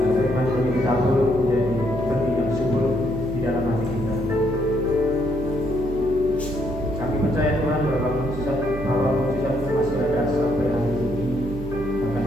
firman Tuhan ditabur menjadi benih yang subur di dalam hati kita. Kami percaya Tuhan bahwa mujizat itu masih ada sampai hari ini, bahkan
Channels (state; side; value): noise; right; hum, 9 dB below the sound